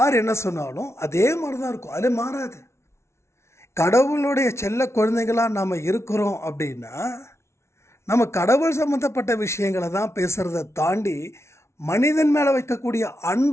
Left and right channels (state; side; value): late; right; 0.13 ms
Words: என்ன சொன்னாலும் அதே மாதிரி தான் இருக்கும், அது மாறாது. கடவுளுடைய செல்ல குழந்தைகளாக நாம் இருக்கிறோம் அப்படின்னா நம்ம கடவுள் சம்மந்தப்பட்ட விஷயங்களை தான் பேசுகிறத தாண்டி மனிதன் மேலே வைக்கக்கூடிய